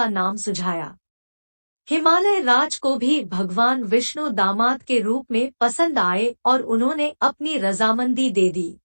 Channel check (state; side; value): inverted; both; correlation -1.00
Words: नाम सुझाया। हिमालय राज को भी भगवान विष्णु दामाद के रूप में पसंद आए और उन्होंने अपनी रजामंदी दे दी।